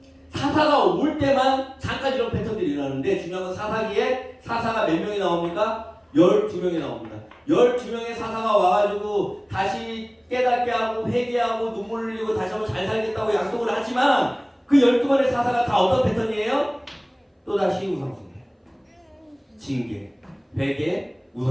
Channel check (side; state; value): both; identical; correlation 1.00